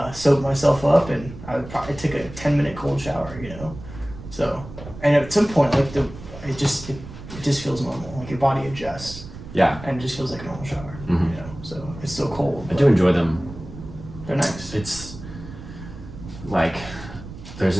soaked myself up, and I took a 10-minute cold shower, you know? So, and at some point, like, it just feels normal. Like, your body adjusts. Yeah. And it just feels like a normal shower, you know? So, it's still cold. I do enjoy them. They're nice. It's, like, there's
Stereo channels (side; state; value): right; noise; rumble, 14 dB below the sound